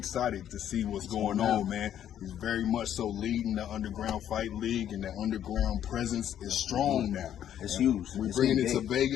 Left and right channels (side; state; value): right; quieter; 10.4 dB